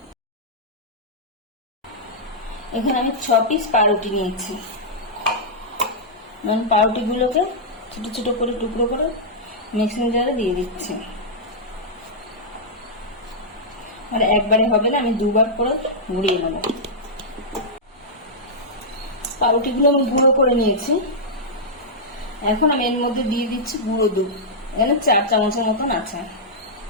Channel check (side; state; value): both; normal; correlation -0.10